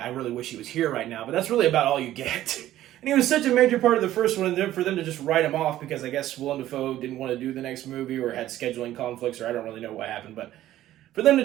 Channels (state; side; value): quieter; left; 13.7 dB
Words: really wish he was here right now. But that's really about all you get. And he was such a major part of the first one, and then for them to just write him off because I guess Willem Dafoe didn't want to do the next movie or had scheduling conflicts, or I don't really know what happened, but for them to